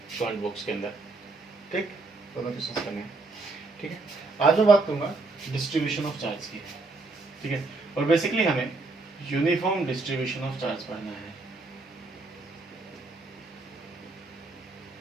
कमेंट बॉक्स के अंदर, ठीक। दोनों क्वेश्चंस करने हैं, ठीक है। आज मैं बात करूँगा डिस्ट्रीब्यूशन ऑफ चार्ज की, ठीक है। और बेसिकली हमें यूनिफॉर्म डिस्ट्रीब्यूशन ऑफ चार्ज पढ़ना है।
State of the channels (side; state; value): left; quieter; 3.4 dB